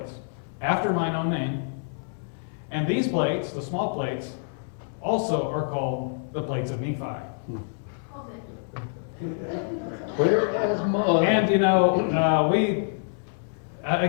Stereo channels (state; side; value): silent; right; 60 dB below the other